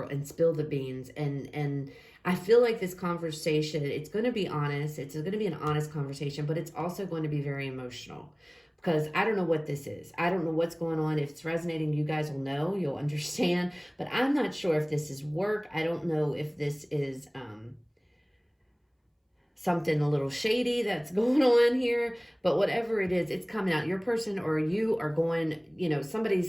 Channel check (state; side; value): identical; both; correlation 1.00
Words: and spill the beans. And I feel like this conversation, it's going to be honest. It's going to be an honest conversation, but it's also going to be very emotional. Because I don't know what this is. I don't know what's going on. If it's resonating, you guys will know. You'll understand. But I'm not sure if this is work. I don't know if this is something a little shady that's going on here. But whatever it is, it's coming out. Your person or you are going,